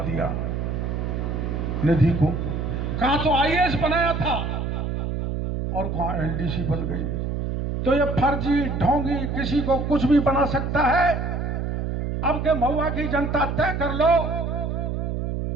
दिया निधि को। कहा तो आईएएस बनाया था, और कहां एलडीसी बन गई। तो ये फर्जी ढोंगी किसी को कुछ भी बना सकता है। अब के महुआ की जनता तय कर लो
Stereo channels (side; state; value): right; noise; hum, 2 dB below the sound